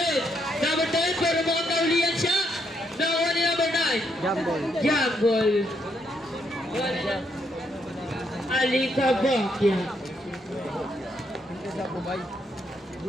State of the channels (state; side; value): normal; both; correlation 0.76